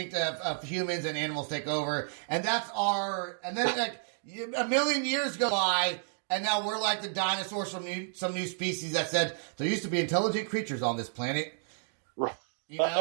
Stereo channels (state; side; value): silent; left; digital silence